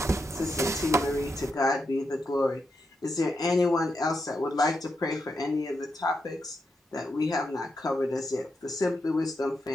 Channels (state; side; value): normal; both; correlation 0.85